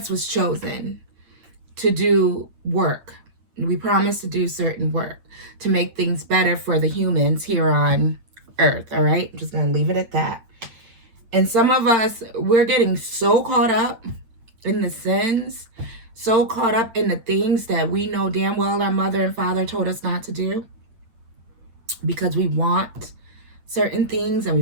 was chosen to do work. We promised to do certain work to make things better for the humans here on earth, all right? I'm just going to leave it at that. And some of us, we're getting so caught up in the sins, so caught up in the things that we know damn well our mother and father told us not to do, because we want certain things and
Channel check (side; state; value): left; late; 8.8 ms